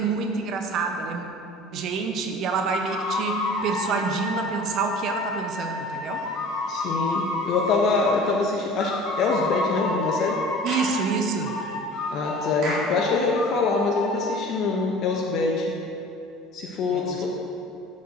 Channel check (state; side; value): normal; both; correlation 0.42